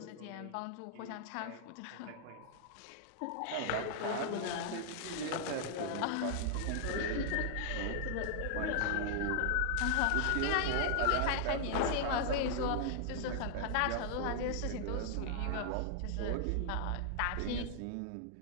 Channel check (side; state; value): both; different; correlation 0.00